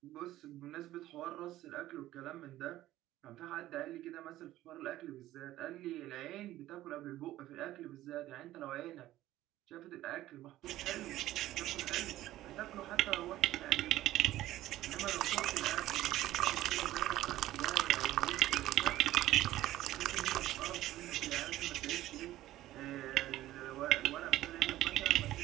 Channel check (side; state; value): left; quieter; 14.9 dB